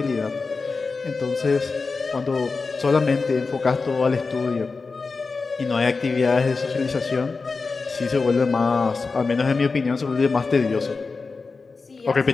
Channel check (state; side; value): quieter; right; 4.3 dB